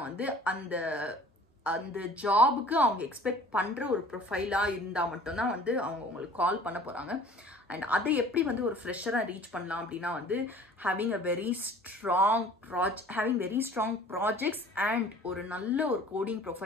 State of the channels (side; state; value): both; normal; correlation 0.48